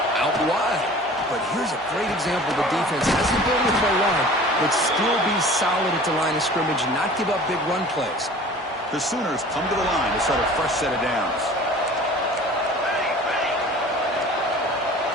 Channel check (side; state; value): both; normal; correlation 0.44